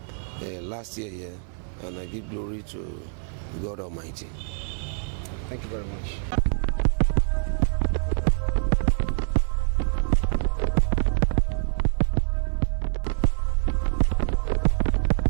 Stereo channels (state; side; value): silent; left; 61 dB below the other